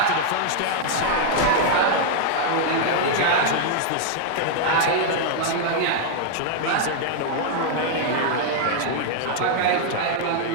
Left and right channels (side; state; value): both; different; correlation -0.01